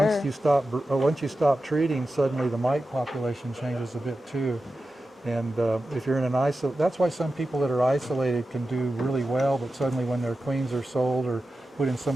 once you stop treating, suddenly the mite population changes a bit too. And if you're in an that's why some people that are isolated can do really well, but suddenly when their queens are sold or put in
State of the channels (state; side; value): normal; both; correlation 0.92